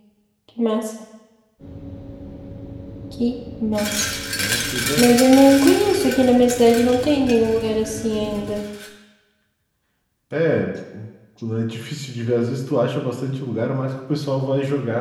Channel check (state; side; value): identical; both; correlation 1.00